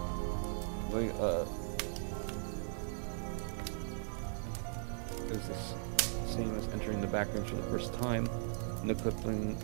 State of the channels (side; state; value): left; silent; digital silence